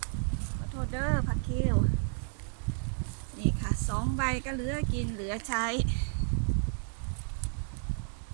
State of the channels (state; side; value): silent; left; digital silence